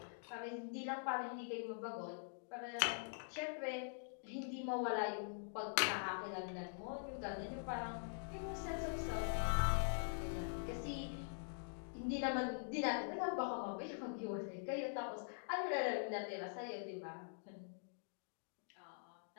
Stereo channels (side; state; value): right; silent; digital silence